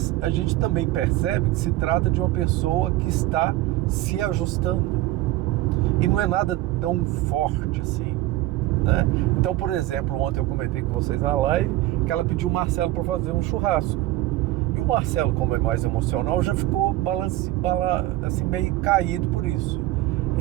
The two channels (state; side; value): quieter; left; 16.4 dB